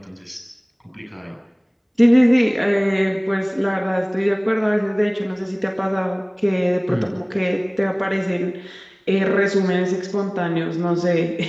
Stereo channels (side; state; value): both; identical; correlation 1.00